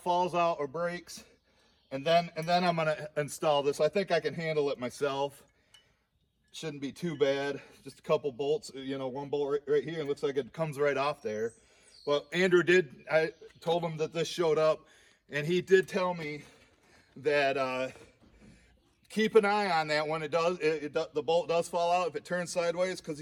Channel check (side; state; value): both; identical; correlation 1.00